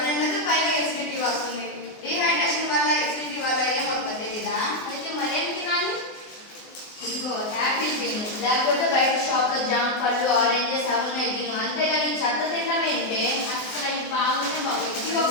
నిండదు, పైగా ఎసిడిటీ వస్తుంది. డీహైడ్రేషన్ వల్ల ఎసిడిటీ వల్ల ఏమవుతుంది తెలీదా? అయితే మరేం తినాలి? ఇదిగో యాపిల్ తిను, లేకపోతే బయట షాప్లో జామ పళ్ళు, ఆరెంజెస్ అవున్నాయి తిను. అంతేగాని చెత్త తినడం ఏంటే? అసలు అవి బాగుంటే బాగుంది. ఇవి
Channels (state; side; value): late; right; 24 ms